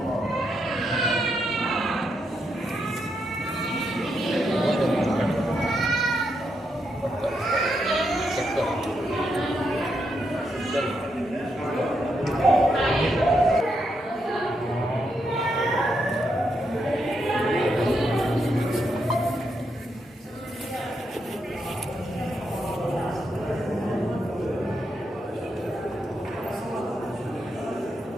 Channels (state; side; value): normal; both; correlation 0.81